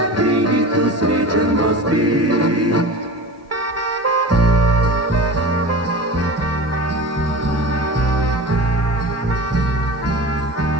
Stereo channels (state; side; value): normal; both; correlation 0.33